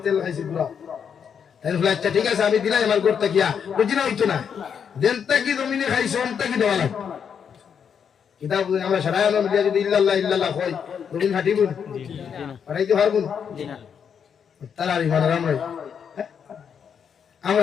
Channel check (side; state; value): right; quieter; 7.3 dB